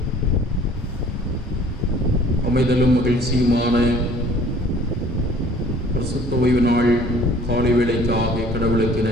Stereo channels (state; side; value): normal; both; correlation 0.53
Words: அமைதலும் மகிழ்ச்சியுமான பரிசுத்த ஓய்வு நாள் காலை வேளைக்காக கடவுளுக்கு